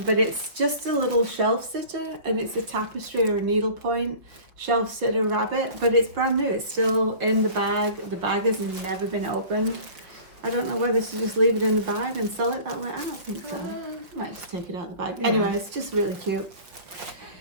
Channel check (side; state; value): left; late; 5.3 ms